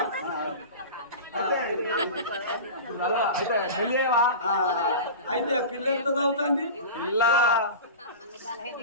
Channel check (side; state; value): both; inverted; correlation -0.31